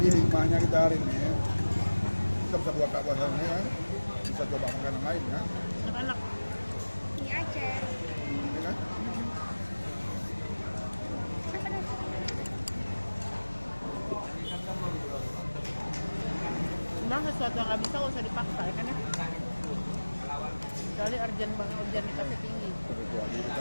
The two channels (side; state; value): both; inverted; correlation -1.00